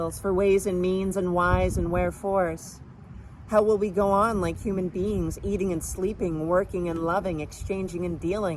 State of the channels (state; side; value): identical; both; correlation 1.00